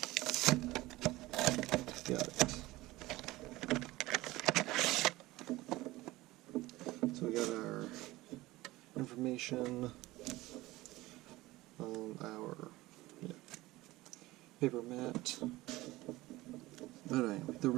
Got it. So we got our information on our paper mat. But anyway, the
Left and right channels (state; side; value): quieter; left; 18.8 dB